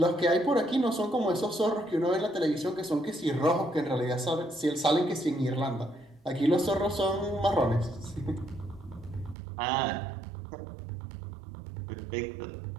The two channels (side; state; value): left; drops out; at 9.3 s